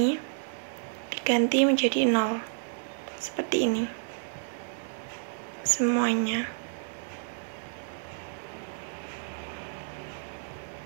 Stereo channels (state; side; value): silent; left; digital silence